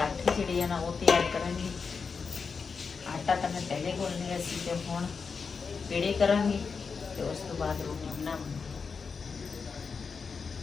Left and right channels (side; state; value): right; quieter; 5.3 dB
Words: ਜਿਹੜੇ ਆ ਨਾ ਉਹ ਤਿਆਰ ਕਰਾਂਗੇ। ਆਟਾ ਤਾਂ ਮੈਂ ਪਹਿਲੇ ਗੁੰਨ ਲਿਆ ਸੀ ਤੇ ਹੁਣ ਪੇੜੇ ਕਰਾਂਗੇ ਤੇ ਉਸ ਤੋਂ ਬਾਅਦ ਰੋਟੀ ਬਣਾਵਾਂਗੇ।